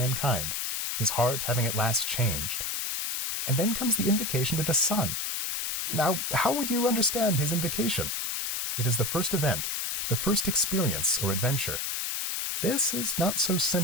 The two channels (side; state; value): left; noise; hiss, 2 dB below the sound